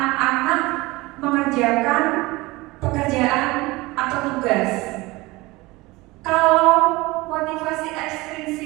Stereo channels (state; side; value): quieter; left; 21.6 dB